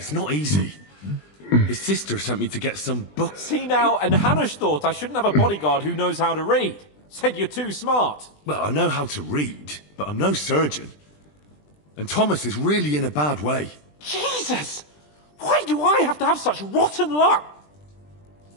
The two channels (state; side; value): late; right; 20 ms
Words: not easy. His sister sent me to get some books. See now, and Hanush thought I shouldn't have a bodyguard who knows how to read. Said you're too smart. Well, I know how to read, but I'm no surgeon. And Thomas is really in a bad way. Jesus! Why do I have to have such rotten luck?